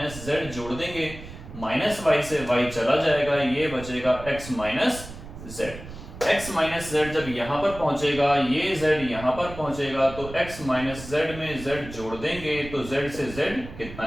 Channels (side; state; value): right; noise; rumble, 13 dB below the sound